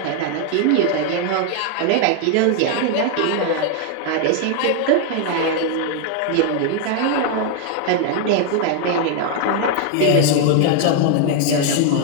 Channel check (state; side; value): different; both; correlation 0.00